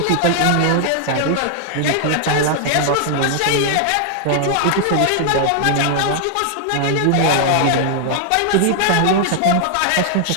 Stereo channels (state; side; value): different; both; correlation 0.00